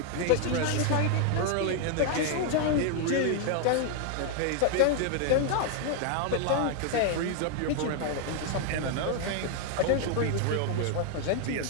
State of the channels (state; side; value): different; both; correlation 0.00